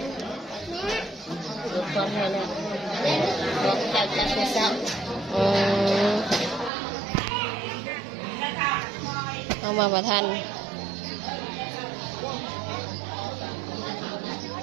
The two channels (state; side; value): drops out; left; at 6.7 s